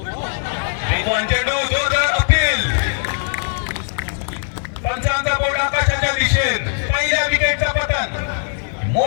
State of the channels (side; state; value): right; silent; 66 dB below the other